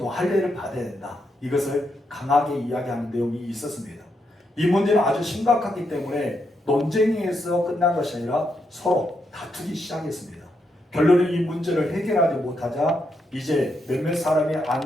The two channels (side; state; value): both; normal; correlation 0.81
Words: 또 할례를 받아야 된다. 이것을 강하게 이야기하는 내용이 있었습니다. 이 문제는 아주 심각하기 때문에 논쟁에서 끝난 것이 아니라 서로 다투기 시작했습니다. 결론은 이 문제를 해결하지 못하자 이제 몇몇 사람이